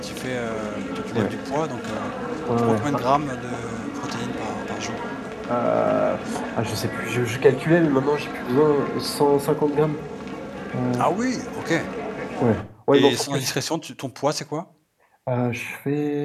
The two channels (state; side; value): identical; both; correlation 1.00